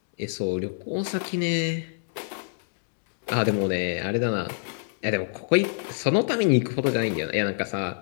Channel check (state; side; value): silent; right; digital silence